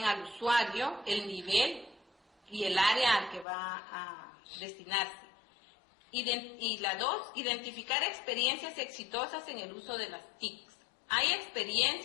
al usuario, el nivel y el área al que va a destinarse. Y la 2, identificar experiencias exitosas en el uso de las TIC. Hay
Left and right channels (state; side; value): drops out; right; at 3.5 s